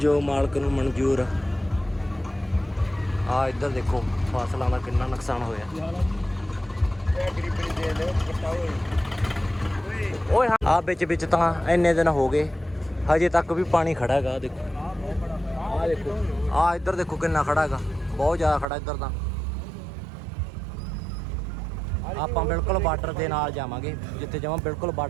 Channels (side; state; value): left; drops out; at 18.7 s